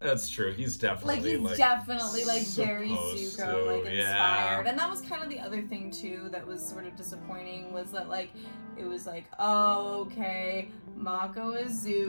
That's true. He's definitely definitely very Zuko, like inspired. Yeah. And that was kind of the other thing too that was sort of disappointing was that like it was like, oh, okay, Mako is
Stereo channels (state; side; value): inverted; both; correlation -1.00